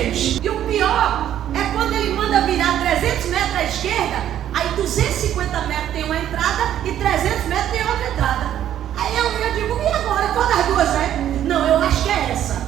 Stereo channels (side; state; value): left; quieter; 11.1 dB